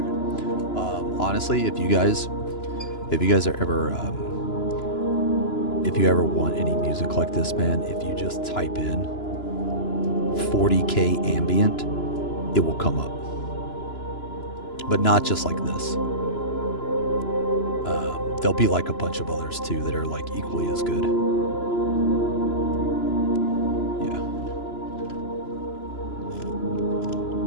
Honestly, if you guys are ever, if you ever want any music like this, man, if you just type in 40K ambient, it will come up. But not just like this. There'll be like a bunch of others too that are like equally as good. Yeah.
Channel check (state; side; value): late; right; 2.9 ms